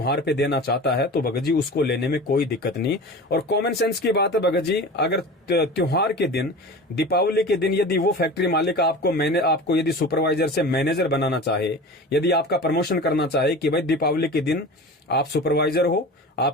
पे देना चाहता है तो भगत जी उसको लेने में कोई दिक्कत नहीं। और कॉमन सेंस की बात है भगत जी, अगर त्योहार के दिन, दीपावली के दिन यदि वो फैक्ट्री मालिक आपको यदि सुपरवाइजर से मैनेजर बनाना चाहे, यदि आपका प्रमोशन करना चाहे कि भाई दीपावली के दिन आप सुपरवाइजर हो,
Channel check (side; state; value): both; normal; correlation 0.34